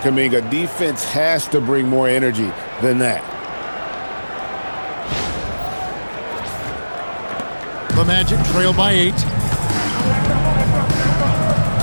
Defense has to bring more energy than that. The Magic trail by 8.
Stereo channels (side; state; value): both; inverted; correlation -1.00